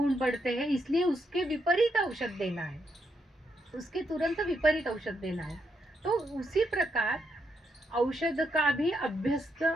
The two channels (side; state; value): both; normal; correlation 0.79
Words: बढ़ते हैं, इसलिए उसके विपरीत औषध देना है, उसके तुरंत विपरीत औषध देना है. तो उसी प्रकार औषध का भी अभ्यस्त